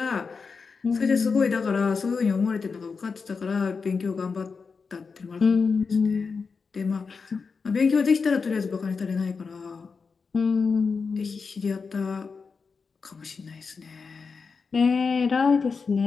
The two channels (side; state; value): right; quieter; 5.0 dB